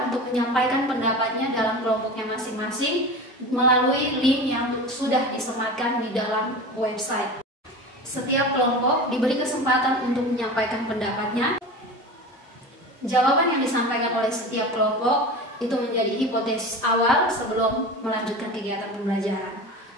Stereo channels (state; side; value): normal; both; correlation 0.31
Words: untuk menyampaikan pendapatnya dalam kelompoknya masing-masing melalui link yang sudah disematkan di dalam website. Setiap kelompok diberi kesempatan untuk menyampaikan pendapatnya. Jawaban yang disampaikan oleh setiap kelompok itu menjadi hipotesis awal sebelum melanjutkan kegiatan pembelajaran.